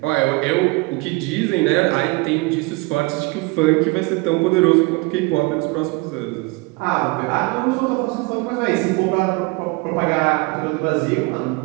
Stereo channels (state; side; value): quieter; left; 25.5 dB